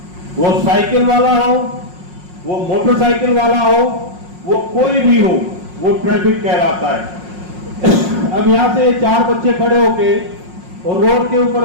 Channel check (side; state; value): left; late; 5.5 ms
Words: वो साइकिल वाला हो, वो मोटरसाइकिल वाला हो, वो कोई भी हो, वो ट्रैफिक कहलाता है। अब यहां से 4 बच्चे खड़े होके और रोड के